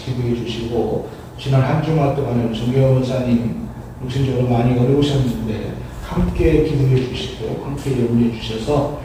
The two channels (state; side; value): identical; both; correlation 1.00